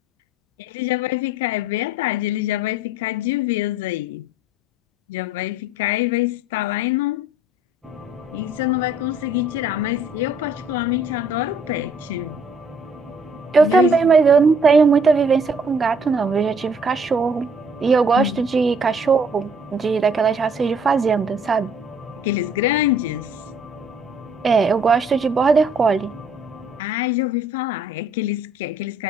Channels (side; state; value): both; normal; correlation 0.60